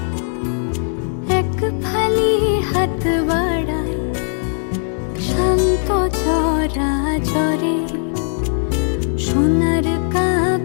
এক ফালি হাত বাড়ায় শান্ত চরাচরে। সোনার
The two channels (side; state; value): right; silent; 61 dB below the other